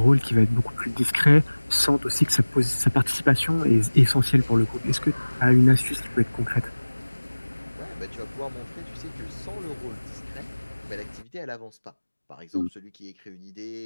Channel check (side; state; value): both; inverted; correlation -1.00